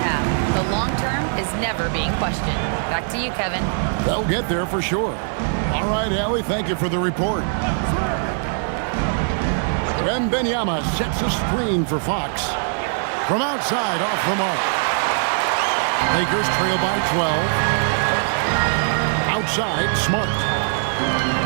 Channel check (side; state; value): left; silent; 65 dB below the other